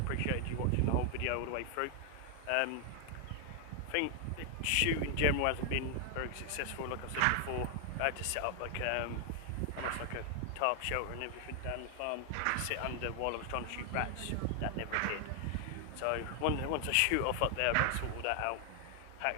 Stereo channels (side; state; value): both; different; correlation 0.00